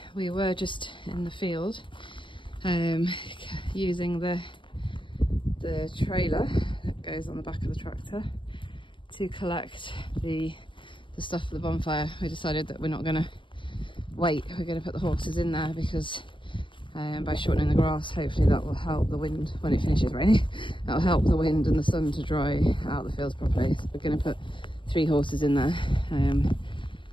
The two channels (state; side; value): late; right; 0.24 ms